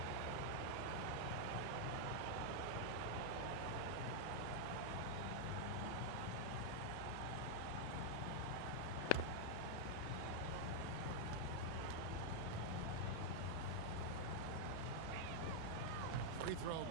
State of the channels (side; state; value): both; different; correlation -0.01